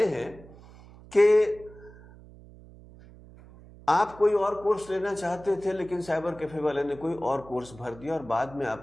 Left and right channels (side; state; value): right; noise; hum, 21 dB below the sound